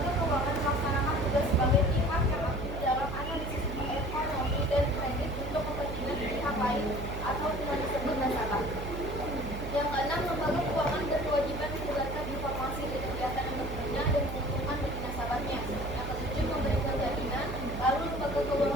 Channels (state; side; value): noise; right; hum, 7 dB below the sound